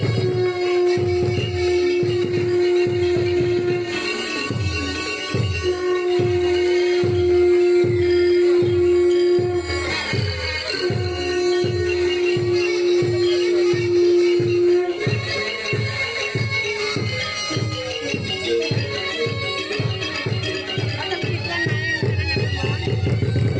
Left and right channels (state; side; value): identical; both; correlation 1.00